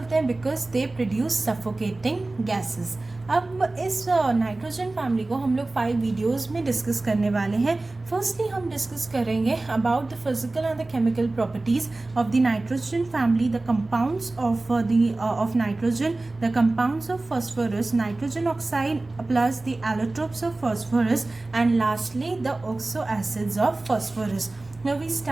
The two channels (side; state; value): left; quieter; 3.1 dB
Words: हैं? Because they produce suffocating gases. अब इस नाइट्रोजन फैमिली को हम लोग 5 वीडियोस में डिस्कस करने वाले हैं। फर्स्टली हम डिस्कस करेंगे about the physical and the chemical properties of the nitrogen family, the compounds of nitrogen, the compounds of phosphorus, nitrogen oxide plus the allotropes of phosphorus, and lastly the oxo acids of phosphorus. Now we